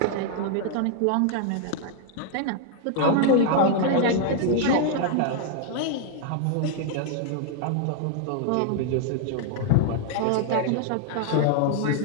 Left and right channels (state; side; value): different; both; correlation 0.00